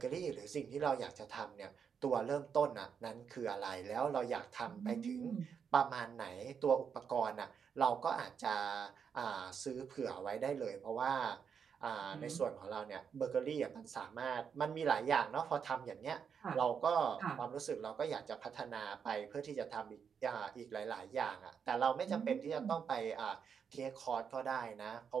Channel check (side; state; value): left; quieter; 6.9 dB